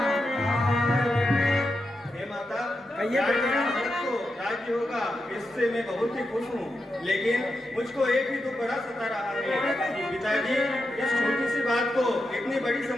राज्य होगा, इससे मैं बहुत ही खुश हूँ, लेकिन मुझको एक ही दुख बड़ा सता रहा है कि पिताजी इस छोटी सी बात को इतनी बड़ी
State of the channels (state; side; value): normal; both; correlation 0.87